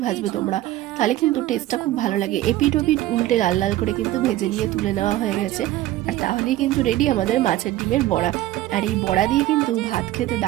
ভাজবে তোমরা, তাহলে কিন্তু টেস্টটা খুব ভালো লাগে। এপিট ওপিট উল্টে লাল লাল করে কিন্তু ভেজে নিয়ে তুলে নেওয়া হয়ে গেছে। আর তাহলেই কিন্তু রেডি আমাদের মাছের ডিমের বড়া। আর এই বড়া দিয়ে কিন্তু ভাত খেতে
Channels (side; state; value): left; quieter; 15.1 dB